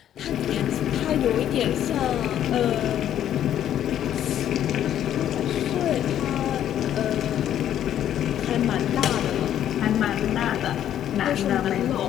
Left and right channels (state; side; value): quieter; right; 10.8 dB